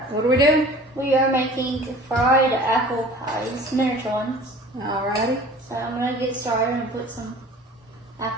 what are we doing? We are making fried apple pies, miniature ones. Alrighty. So I'm gonna get started and put some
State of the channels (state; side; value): normal; both; correlation 0.44